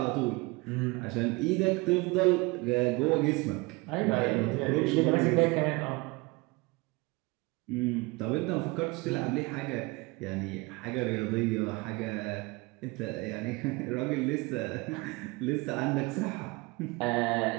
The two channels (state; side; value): quieter; left; 24.6 dB